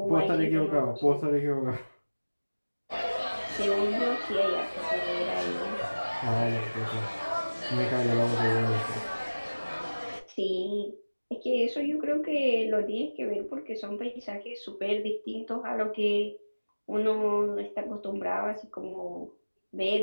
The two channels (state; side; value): inverted; both; correlation -1.00